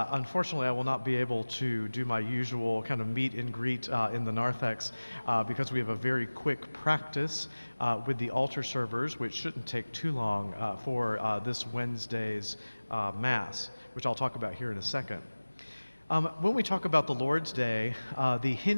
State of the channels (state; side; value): inverted; both; correlation -1.00